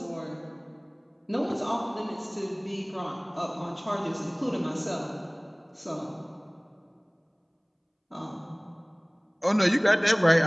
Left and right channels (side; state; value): both; identical; correlation 1.00